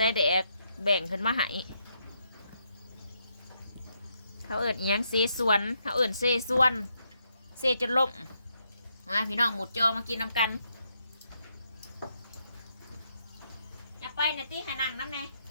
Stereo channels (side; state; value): both; inverted; correlation -0.78